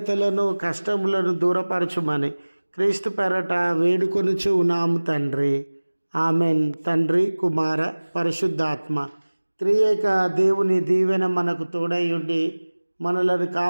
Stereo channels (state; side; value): inverted; both; correlation -1.00